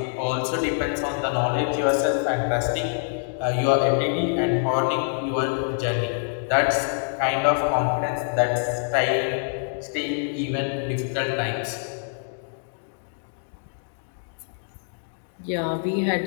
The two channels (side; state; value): right; silent; digital silence